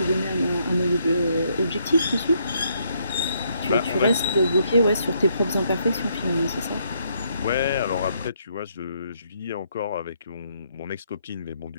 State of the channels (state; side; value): inverted; both; correlation -0.73